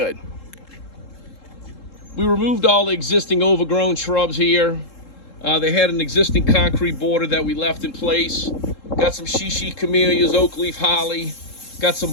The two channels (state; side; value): late; right; 3.7 ms